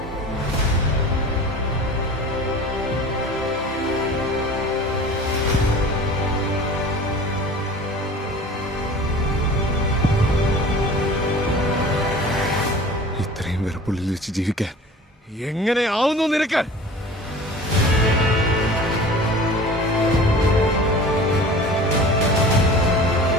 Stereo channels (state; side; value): normal; both; correlation 0.41